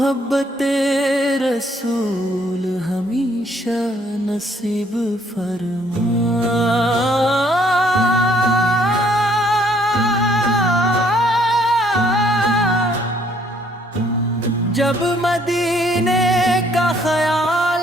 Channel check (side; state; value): both; normal; correlation 0.65